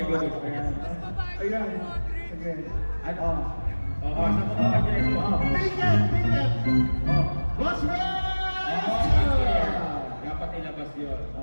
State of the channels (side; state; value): both; inverted; correlation -1.00